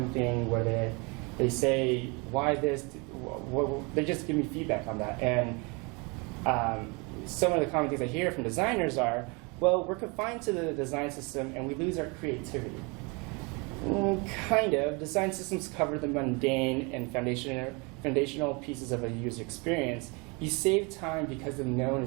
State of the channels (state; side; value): quieter; left; 29.9 dB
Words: thing where they say, why this? They just give me feedback on that. And some of the common things I hear from designers are, well, we're confined to the design system and we lose our creativity. Kind of. Design systems cover the mundane and foundational pieces of a user experience, you save time because the known